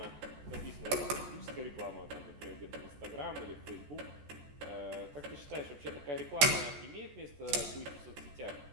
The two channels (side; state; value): left; late; 14 ms